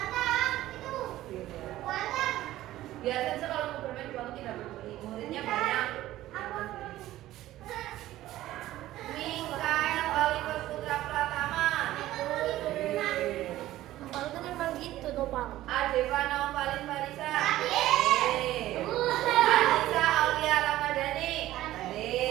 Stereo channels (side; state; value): left; quieter; 15.0 dB